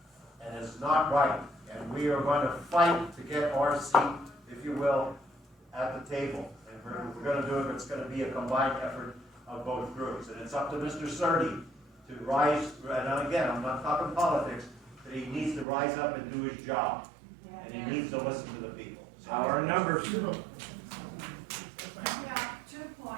And it's not right. And we are going to fight to get our seat, if you will, at the table. And we're going to do it, it's going to be a combined effort of both groups. And it's up to Mr. Certi to rise, and again, I'm not talking politics, but he needs to rise up and do his job. And he needs to listen to the people. So Our numbers. Yeah, 2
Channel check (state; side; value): drops out; left; at 15.7 s